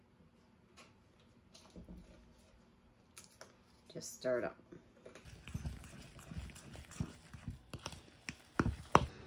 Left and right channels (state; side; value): identical; both; correlation 1.00